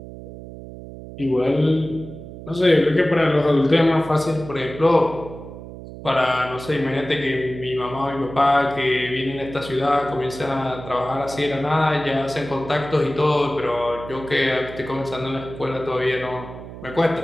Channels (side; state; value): right; noise; hum, 13 dB below the sound